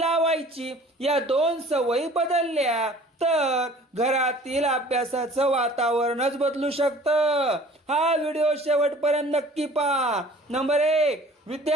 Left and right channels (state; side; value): normal; both; correlation 0.49